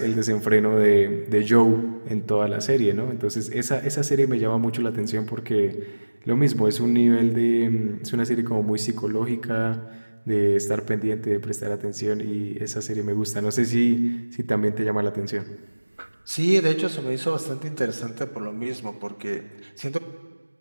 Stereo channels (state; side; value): inverted; both; correlation -1.00